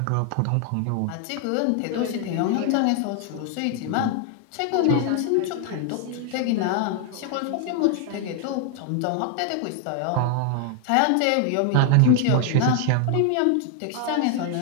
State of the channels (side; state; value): both; different; correlation 0.00